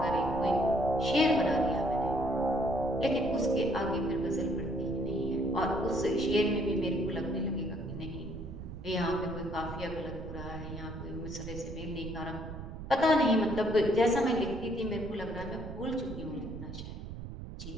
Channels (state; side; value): noise; right; rumble, 10 dB below the sound